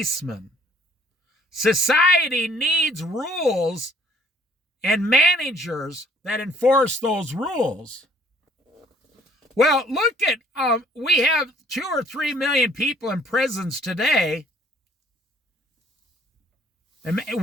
Society needs rules and managers that enforce those rules. Well, look at, we have 2 or 3 million people in prisons today. And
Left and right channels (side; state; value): both; normal; correlation 0.59